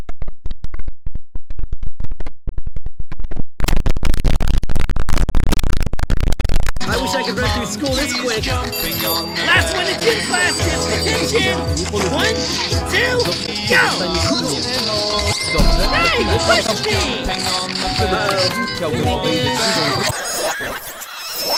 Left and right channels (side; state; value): both; identical; correlation 1.00